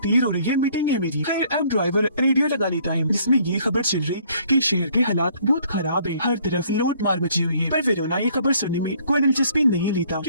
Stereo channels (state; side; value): inverted; both; correlation -0.61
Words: हो रही है, मीटिंग है मेरी। खैर अब ड्राइवर रेडियो लगा लेता है जिसमें ये खबर चल रही कि शहर के हालात बहुत खराब है, हर तरफ लूट मार मची हुई है। पर वेरोना ये खबर सुनने में कोई दिलचस्पी नहीं लेता